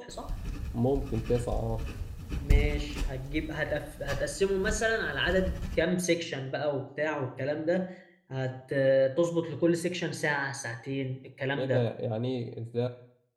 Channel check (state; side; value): identical; both; correlation 1.00